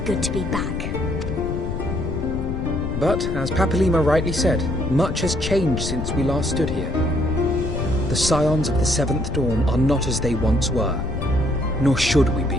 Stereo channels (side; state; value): left; noise; rumble, 4 dB below the sound